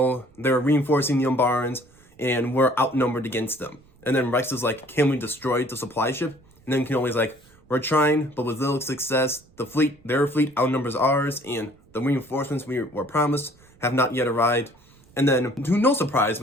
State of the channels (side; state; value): right; noise; rumble, 29 dB below the sound